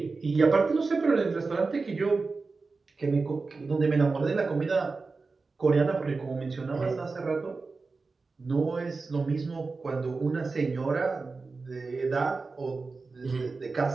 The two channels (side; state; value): left; quieter; 4.1 dB